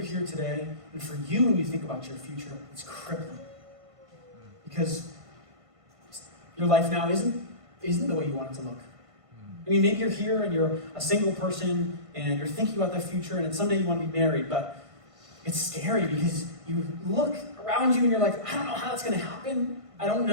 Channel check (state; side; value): late; left; 1.5 ms